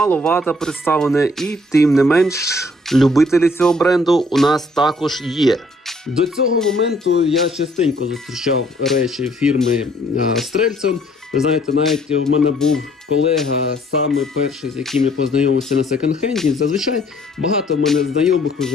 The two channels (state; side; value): normal; both; correlation 0.62